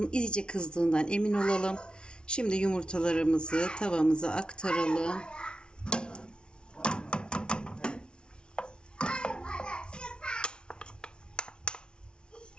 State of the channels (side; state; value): right; late; 0.055 ms